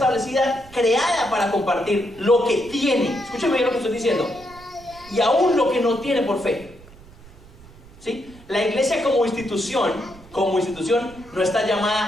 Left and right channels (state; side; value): noise; right; rumble, 22 dB below the sound